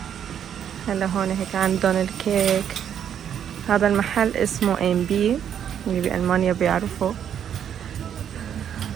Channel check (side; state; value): left; quieter; 9.1 dB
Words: هلا هون هيك عندهم الكيك. هذا المحل اسمه ام بي، اللي بألمانيا بيعرفوا.